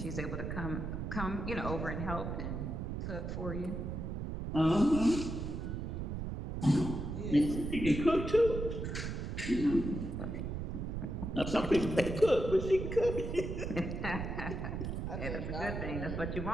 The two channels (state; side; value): noise; right; rumble, 4 dB below the sound